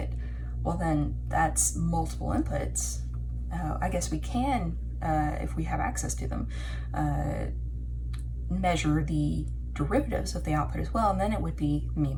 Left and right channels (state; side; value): identical; both; correlation 1.00